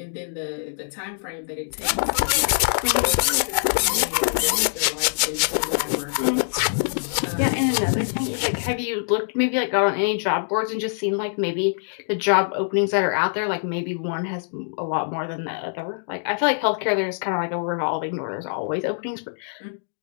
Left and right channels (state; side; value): silent; right; digital silence